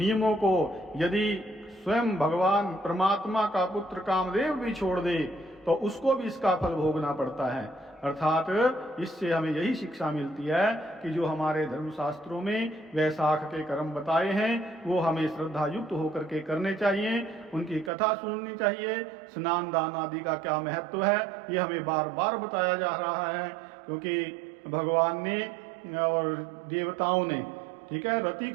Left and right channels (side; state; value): left; drops out; at 17.9 s